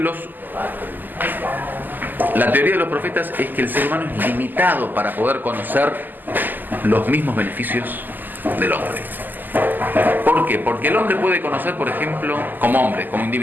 la teoría de los profetas es que el ser humano es limitado para poder conocer los mismos beneficios del hombre. ¿Por qué? Porque el hombre puede conocer, por ejemplo, como hombre, como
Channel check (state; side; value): late; left; 0.087 ms